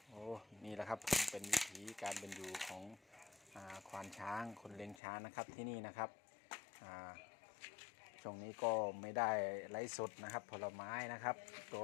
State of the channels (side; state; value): right; drops out; at 5.0 s